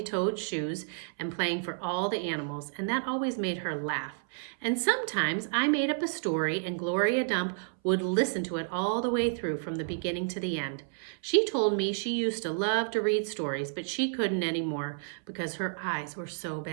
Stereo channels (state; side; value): silent; left; 57 dB below the other